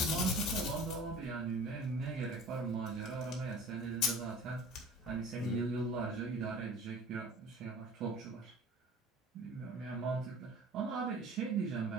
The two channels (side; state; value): both; normal; correlation 0.44